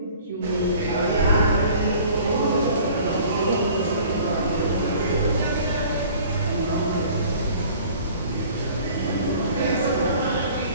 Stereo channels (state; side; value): inverted; both; correlation -0.50